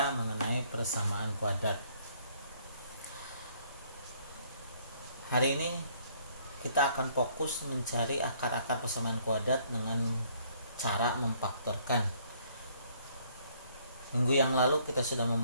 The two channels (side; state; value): both; inverted; correlation -0.63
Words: mengenai persamaan kuadrat. Hari ini kita akan fokus mencari akar-akar persamaan kuadrat dengan cara memfaktorkan. Minggu yang lalu kita sudah